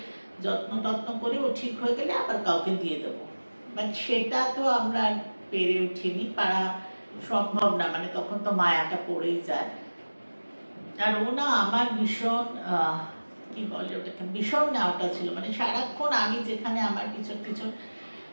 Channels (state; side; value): inverted; both; correlation -1.00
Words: যত্ন টত্ন করে ও ঠিক হয়ে গেলে আবার কাউকে দিয়ে দেবো। বাট সেটা তো আমরা পেরে উঠিনি, পারা সম্ভব না, মানে তখন তো মায়াটা পড়েই যায়। আর ও না আমার ভীষণ কি বলে ওটাকে, ভীষণ নেওয়াটা ছিল, মানে সারাক্ষণ আমি যেখানে আমার পিছন পিছন,